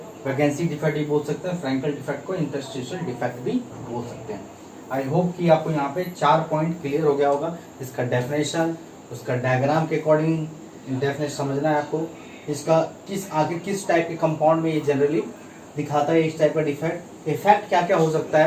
वैकेंसी डिफेक्ट भी बोल सकते हैं, फ्रैंकल डिफेक्ट को इंटरस्टिशियल डिफेक्ट भी बोल सकते हैं। आई होप कि आपको यहाँ पे 4 पॉइंट क्लियर हो गया होगा। इसका डेफिनेशन, उसका डायग्राम के अकॉर्डिंग डेफिनेशन समझना है आपको, इसका किस टाइप के कंपाउंड में ये जनरली दिखाता है इस टाइप का डिफेक्ट, इफेक्ट क्या क्या हो सकता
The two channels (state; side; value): identical; both; correlation 1.00